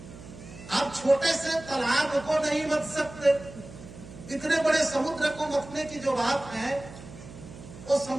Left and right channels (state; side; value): noise; right; hum, 16 dB below the sound